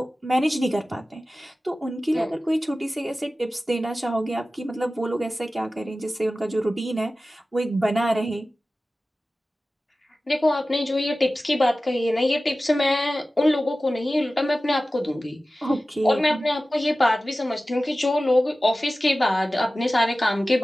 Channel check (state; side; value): normal; both; correlation 0.96